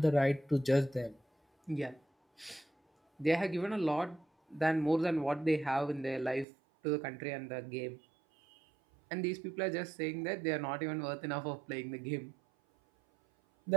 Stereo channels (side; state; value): left; drops out; at 6.5 s